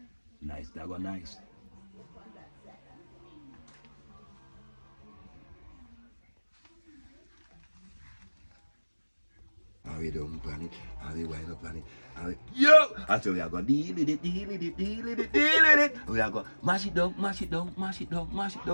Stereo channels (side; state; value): both; inverted; correlation -1.00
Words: nice, that go nice. How we don't plan it, how we wind up plan it, how we... Yo! I tell you, I go deal with it, deal with it, deal with it, deal with it. We are go mash it down, mash it down, mash it down, mash it